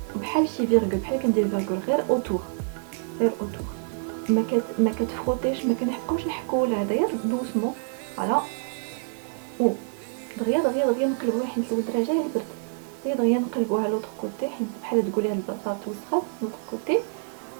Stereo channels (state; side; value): silent; left; 56 dB below the other